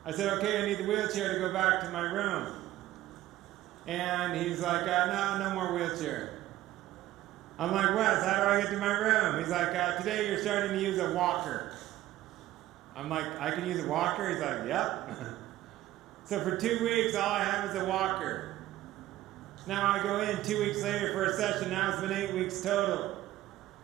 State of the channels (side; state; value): left; quieter; 14.9 dB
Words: I said, okay, I need the wheelchair to go back to my room. And he's like, no more wheelchair. I'm like, Wes, how do I get to my room? He's like, today you're starting to use a walker. I'm like, I can use a walker? He's like, yep. So for 2 weeks, all I have is a walker. Now I go in 2 weeks later for a session. Now it's been 8 weeks total.